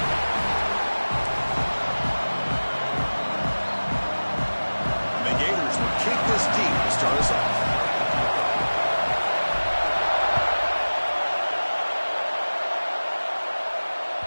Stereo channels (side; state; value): both; inverted; correlation -1.00